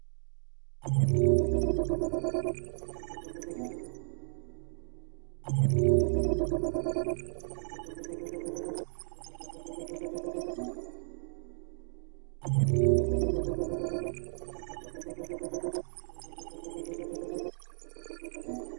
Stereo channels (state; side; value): silent; left; digital silence